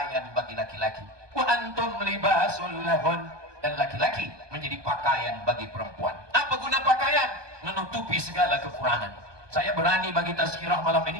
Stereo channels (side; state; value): left; late; 1.2 ms